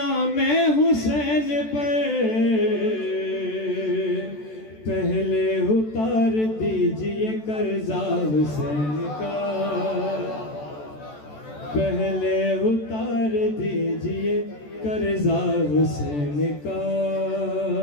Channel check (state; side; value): late; right; 14 ms